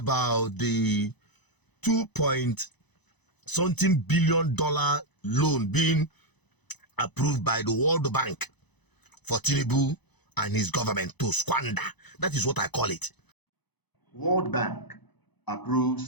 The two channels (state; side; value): late; right; 1.0 ms